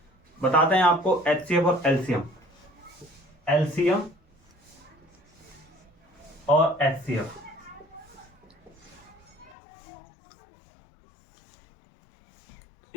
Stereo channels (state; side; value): drops out; right; at 9.6 s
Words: बताते हैं आपको एचसीएफ और एलसीएम और एचसीएफ।